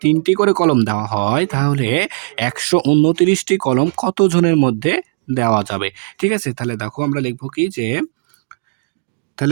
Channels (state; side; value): silent; left; digital silence